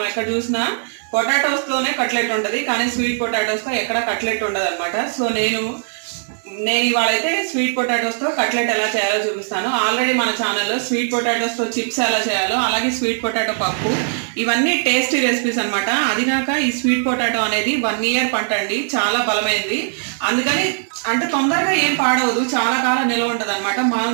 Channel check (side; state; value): left; silent; digital silence